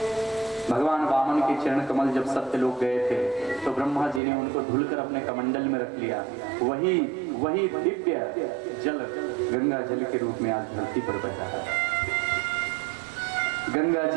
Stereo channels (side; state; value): left; drops out; at 4.2 s